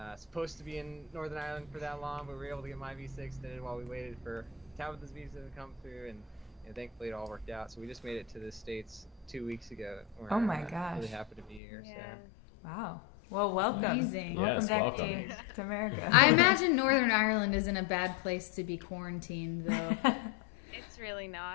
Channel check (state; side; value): drops out; right; at 11.6 s